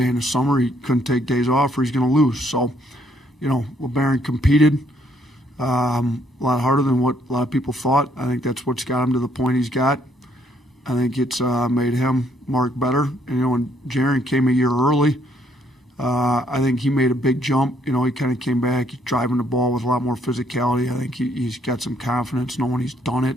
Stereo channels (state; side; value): normal; both; correlation 0.68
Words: in the summer, he couldn't take days off or he's going to lose. So, you know, LeBaron competed a lot harder than what a lot of people thought. I think that's what's got him to the point he's got. I think it's made him, Mark, better. And, you know, when Jaren came a year early, I think he made a big jump. You know, he kind of came back, he's driving the ball with a lot more physicality. I think he's got some confidence knowing he's done it